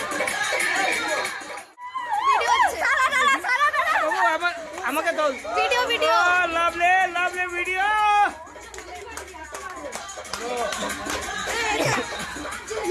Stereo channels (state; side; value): identical; both; correlation 1.00